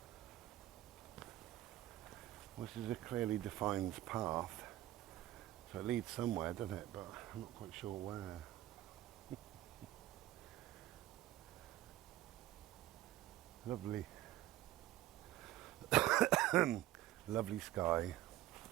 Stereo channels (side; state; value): left; quieter; 14.8 dB